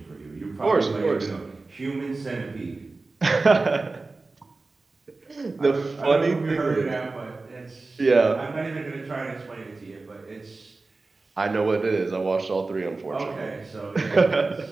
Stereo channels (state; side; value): quieter; left; 3.6 dB